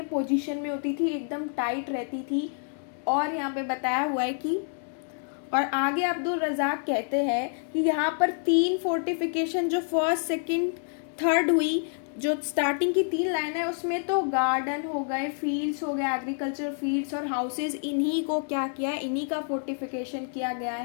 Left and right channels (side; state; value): right; silent; 59 dB below the other